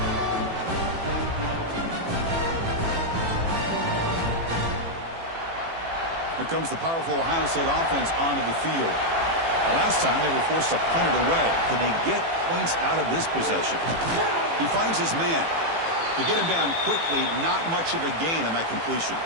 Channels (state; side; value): late; left; 18 ms